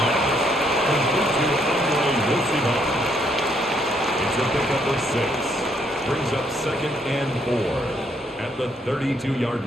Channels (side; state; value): both; normal; correlation 0.71